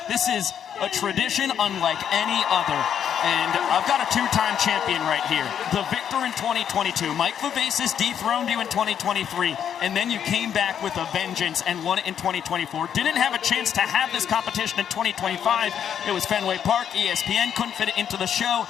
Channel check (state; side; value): quieter; right; 8.8 dB